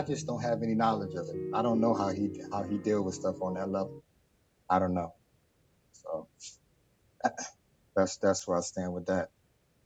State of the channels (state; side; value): identical; both; correlation 1.00